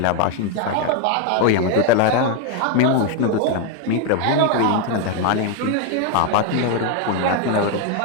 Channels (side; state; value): both; different; correlation 0.01